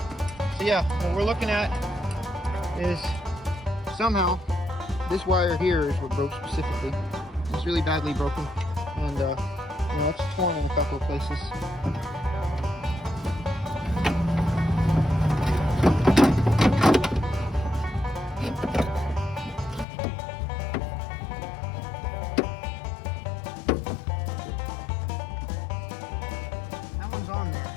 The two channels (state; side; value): drops out; right; at 19.9 s